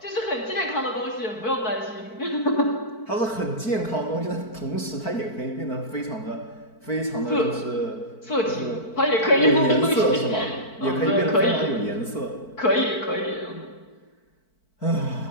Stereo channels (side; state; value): right; late; 4.5 ms